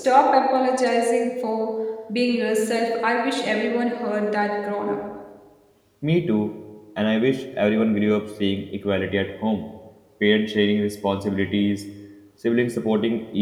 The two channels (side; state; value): both; identical; correlation 1.00